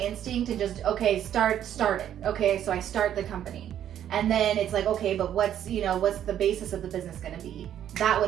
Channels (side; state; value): left; quieter; 10.5 dB